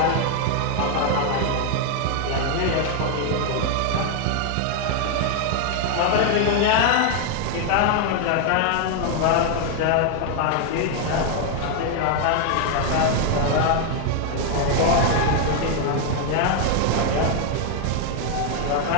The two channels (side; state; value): both; different; correlation 0.00